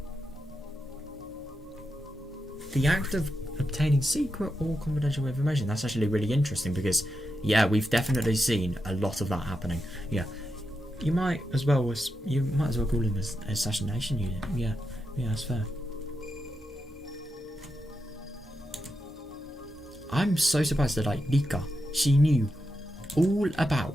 The act of obtaining secret or confidential information. That's actually really interesting because, yeah, we've definitely seen a lot of that happening. Yeah, you might as well call him as assassination unit. Yeah, that's fair. I'm so surprised that, like, Rika, she knew all about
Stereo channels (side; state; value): both; normal; correlation 0.87